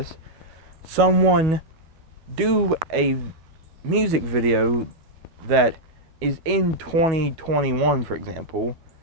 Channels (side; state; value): left; late; 12 ms